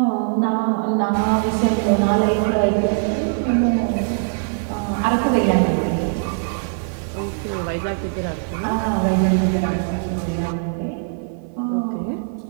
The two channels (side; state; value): left; silent; 63 dB below the other